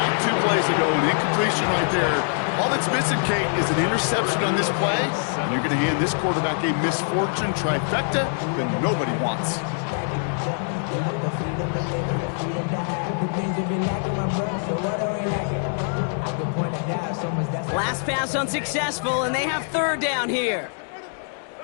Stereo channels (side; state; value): right; silent; 62 dB below the other